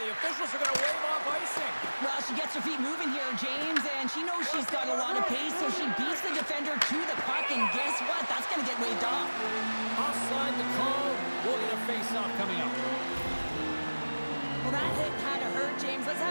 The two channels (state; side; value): inverted; both; correlation -1.00